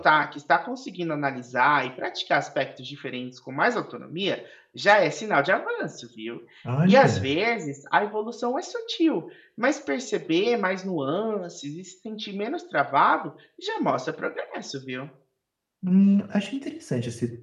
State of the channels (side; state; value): both; identical; correlation 1.00